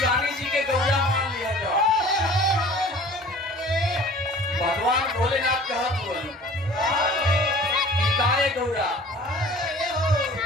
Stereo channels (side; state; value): both; normal; correlation 0.46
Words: जी के गौरा मान लिया जाओ। भगवान भोलेनाथ कहत बोली काहे गौरा